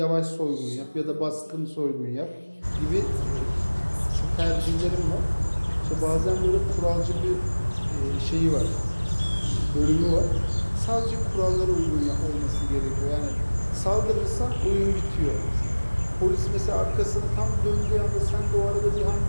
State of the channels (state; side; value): inverted; both; correlation -1.00